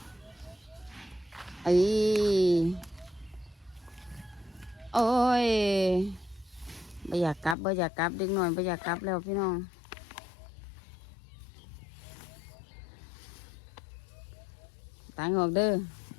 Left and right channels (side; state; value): right; drops out; at 7.6 s